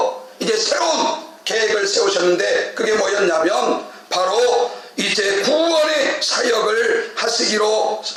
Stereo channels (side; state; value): both; identical; correlation 1.00